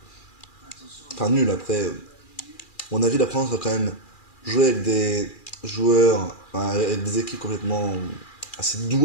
Enfin, nul après. Mon avis, la France va quand même jouer avec des joueurs, enfin, avec des équipes complètement assez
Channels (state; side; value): late; right; 2.4 ms